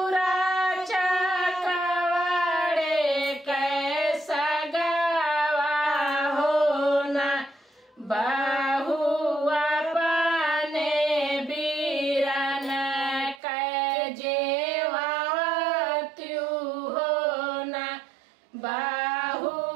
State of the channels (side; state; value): left; drops out; at 13.4 s